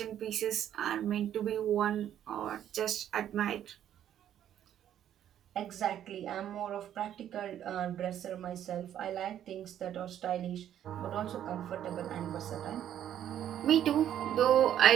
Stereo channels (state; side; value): quieter; left; 10.6 dB